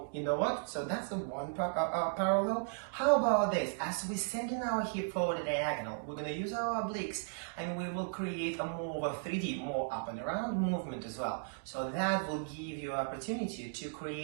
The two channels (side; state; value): left; silent; digital silence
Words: you know what? So that's the one parallel. How about this? As we send in our hip forward diagonal, we're going to use our obliques, and we will create a more of a 3D, more up and around movement as well. So that will give you an opportunity to